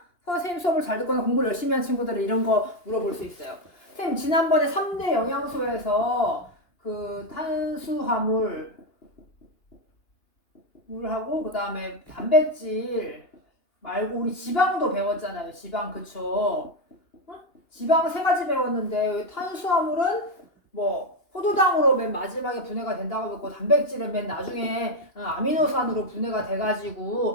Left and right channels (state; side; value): late; right; 2.9 ms